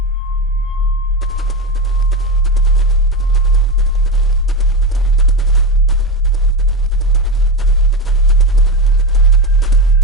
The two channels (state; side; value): normal; both; correlation 0.17